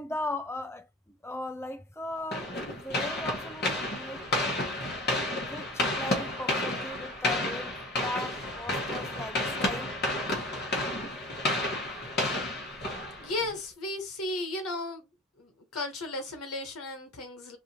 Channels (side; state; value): both; normal; correlation 0.38